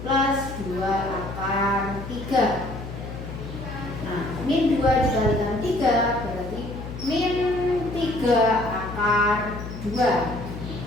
plus 2 akar 3. Nah, min 2 dikalikan 3 berarti min 3 akar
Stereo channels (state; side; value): noise; left; hum, 10 dB below the sound